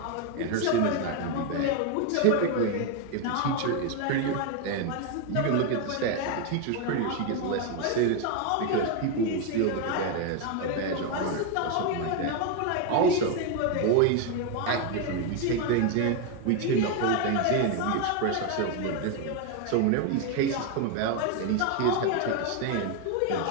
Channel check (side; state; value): both; different; correlation 0.02